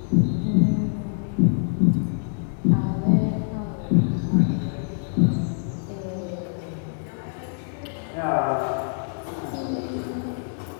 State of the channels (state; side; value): silent; right; digital silence